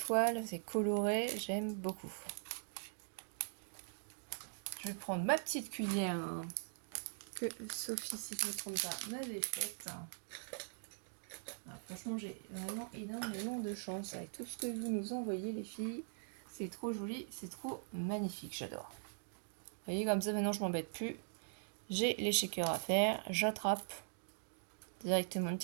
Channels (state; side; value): silent; left; digital silence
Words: c'est coloré, j'aime beaucoup. Je vais prendre ma petite cuillère hein, que Sophie, si je ne me trompe pas, m'avait faite. Alors, franchement, j'ai vraiment énormément de chance avec tout ce que vous nous envoyez, les filles. C'est trop joli, c'est trop magnifique, j'adore. Vous voyez, comme ça, maintenant, je m'embête plus. J'ai les shakers à faire, j'attrape directement une